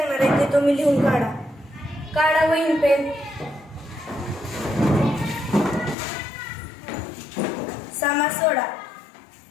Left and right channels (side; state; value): right; drops out; at 6.0 s